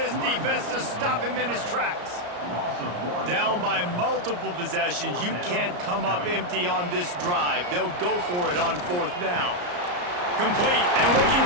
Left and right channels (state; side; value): late; left; 34 ms